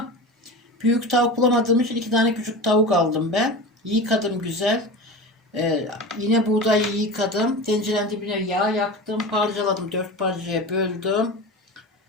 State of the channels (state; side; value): normal; both; correlation 0.30